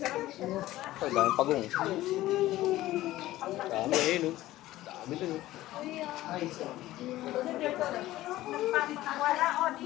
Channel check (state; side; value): quieter; right; 15.9 dB